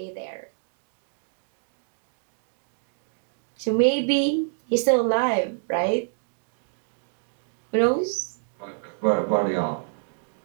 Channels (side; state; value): left; silent; digital silence